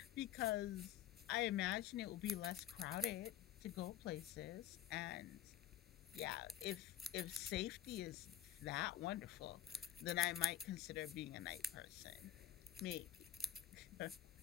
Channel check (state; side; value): quieter; right; 10.7 dB